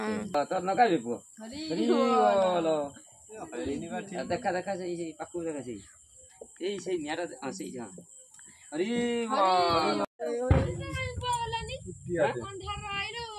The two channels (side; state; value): both; identical; correlation 1.00